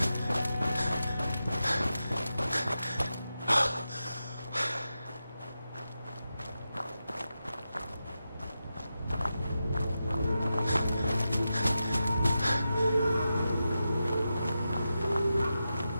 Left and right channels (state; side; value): inverted; both; correlation -0.90